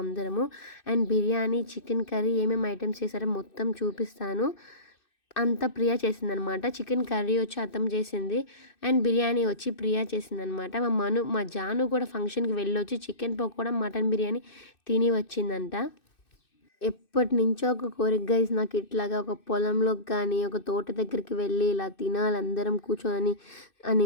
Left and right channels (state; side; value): late; right; 2.6 ms